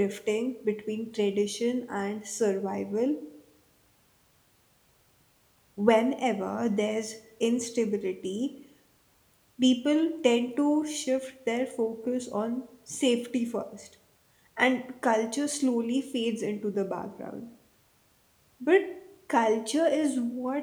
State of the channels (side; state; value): both; identical; correlation 1.00